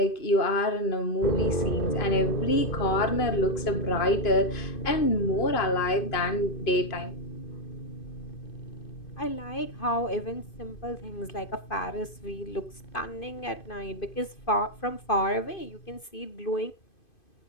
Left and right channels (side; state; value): right; late; 2.5 ms